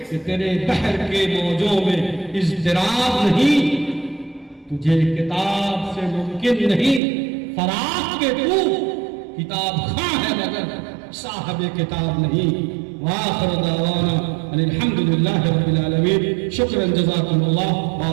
کہ تیرے بحر کے موجوں میں اضطراب نہیں، تجھے کتاب سے ممکن نہیں فراق کے تو کتاب خواہ ہے مگر صاحب کتاب نہیں۔ وآخر دعوانا الحمدللہ رب العالمین۔ شکرا جزاکم اللہ،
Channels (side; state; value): left; drops out; at 7.0 s